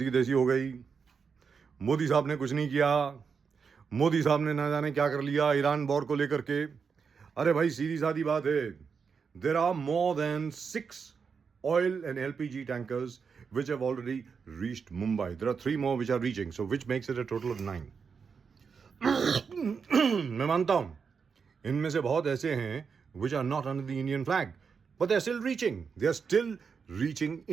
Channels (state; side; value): quieter; left; 5.9 dB